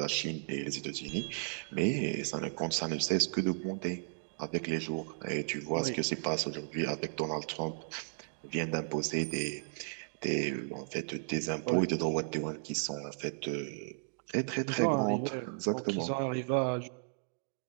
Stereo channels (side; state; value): left; silent; digital silence